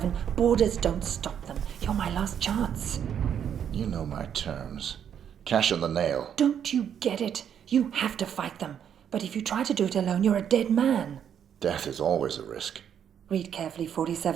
Borders don't stop them. You're my last chance. You know my terms. Cash on the nail. Don't you get it? You have to fight them. But if you try to do it alone, you're a dead man. Death is always a risk. Read carefully,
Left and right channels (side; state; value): left; quieter; 8.7 dB